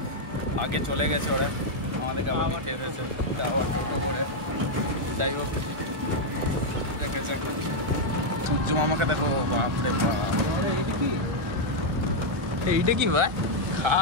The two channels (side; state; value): left; late; 1.5 ms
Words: আগে চলে গেছে ওরা, আমাদেরকে আবার নিতে এসেছে টোটো করে। যাই হোক, দেখা যাক। সূর্য মামাকে দেখো, বাপরে বাপ। এইটা কি ভাই?